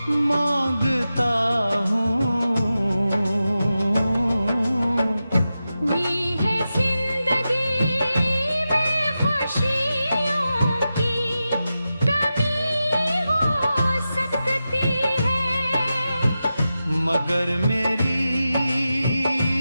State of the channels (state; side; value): inverted; both; correlation -0.92